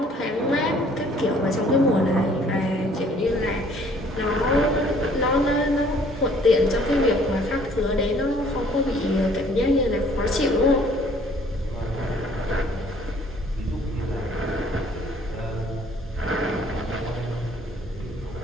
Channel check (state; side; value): normal; both; correlation 0.58